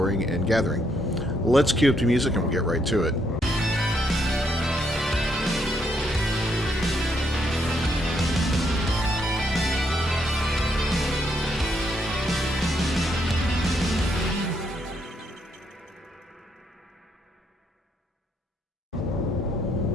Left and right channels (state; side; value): normal; both; correlation 0.75